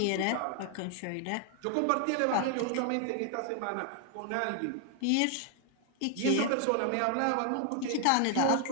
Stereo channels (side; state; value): both; different; correlation 0.00